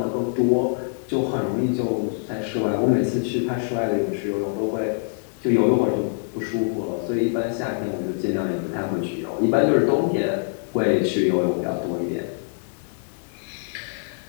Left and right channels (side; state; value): right; silent; digital silence